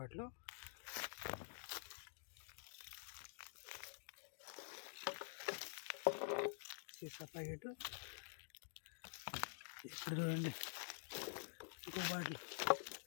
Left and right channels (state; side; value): silent; right; digital silence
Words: సీసా ప్యాకెట్. ఇక్కడ చూడండి, ఇంకో బాటిల్.